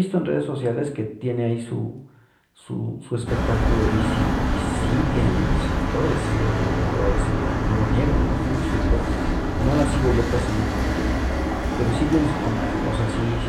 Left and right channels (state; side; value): identical; both; correlation 1.00